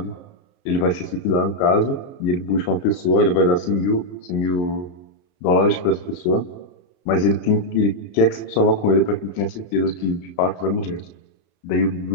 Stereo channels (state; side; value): late; right; 34 ms